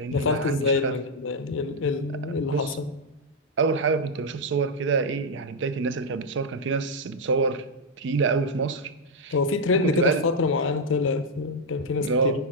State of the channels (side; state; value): both; normal; correlation 0.00